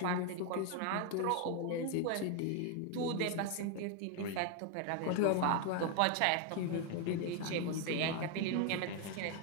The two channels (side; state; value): both; different; correlation 0.01